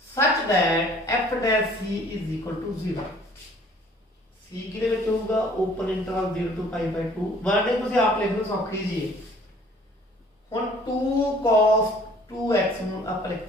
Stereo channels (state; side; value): normal; both; correlation 0.55